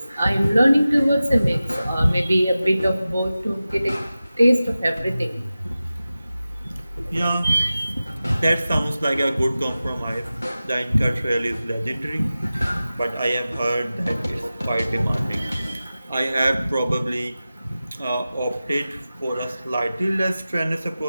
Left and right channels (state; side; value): inverted; both; correlation -0.95